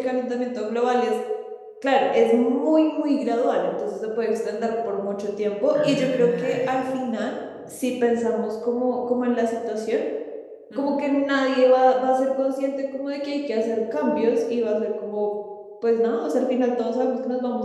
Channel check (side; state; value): both; identical; correlation 1.00